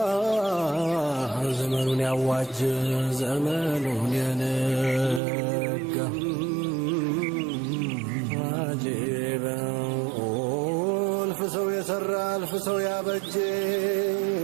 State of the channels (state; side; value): drops out; left; at 5.2 s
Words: ዘመኑን ያዋጅ ዘመኑን የነጋ አጂበ እልፍ ሰው የሰራ እልፍ ሰው ያበጀ